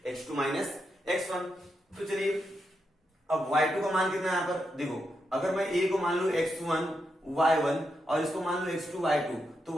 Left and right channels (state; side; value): normal; both; correlation 0.84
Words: x2 माइनस x1। तो चलिए अब y2 का मान कितना है यहाँ पर देखो, अगर मैं A को मान लू x1 y1 और इसको मान लो x2 y2, तो